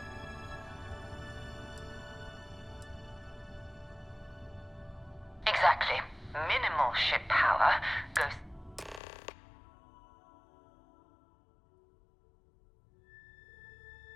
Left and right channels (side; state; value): right; drops out; at 9.0 s